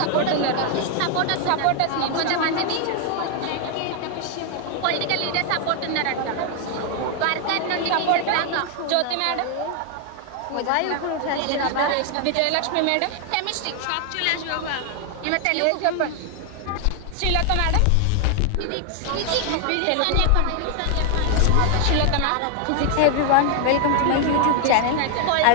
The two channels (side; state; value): both; different; correlation 0.00